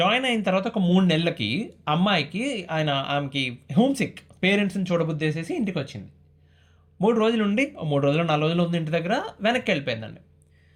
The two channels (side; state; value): both; identical; correlation 1.00